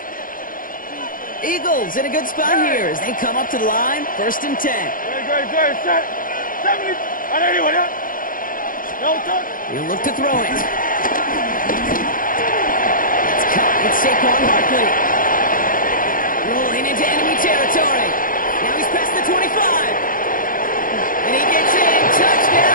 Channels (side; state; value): right; late; 0.40 ms